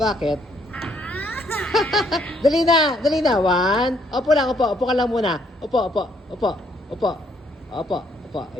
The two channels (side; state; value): both; normal; correlation 0.68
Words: Dali na. 1. Upo ka lang muna. Upo.